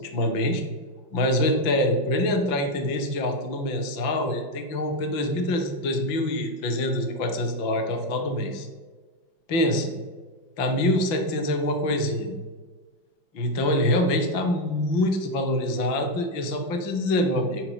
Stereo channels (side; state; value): right; late; 5.9 ms